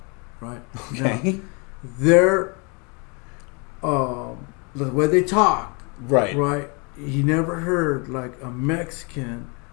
right? Okay. Now, they're the way they talk. Right. Right. You never heard like a Mexican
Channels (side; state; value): right; quieter; 32.8 dB